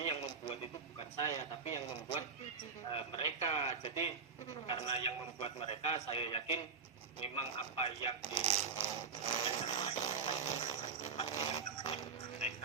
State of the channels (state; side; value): quieter; left; 5.5 dB